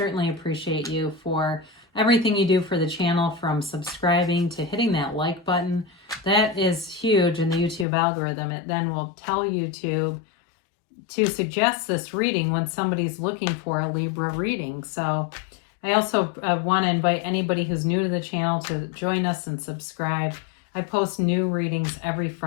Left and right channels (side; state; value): right; drops out; at 7.9 s